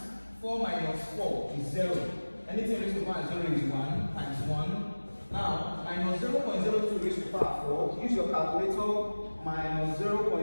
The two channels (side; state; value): both; inverted; correlation -1.00